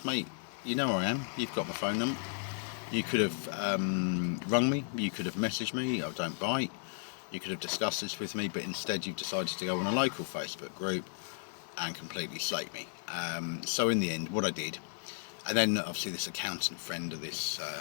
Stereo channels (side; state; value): right; silent; 55 dB below the other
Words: mate, you know where I am, you've got my phone number, you could have rung me, you could have messaged me, I don't bite, you could have discussed this with me, but instead you've decided to go on a local Facebook group and completely slate me. So in the end, what I did, and then obviously this accountant friend of this